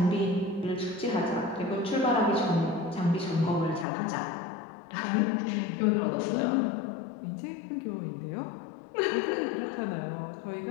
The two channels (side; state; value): right; drops out; at 3.9 s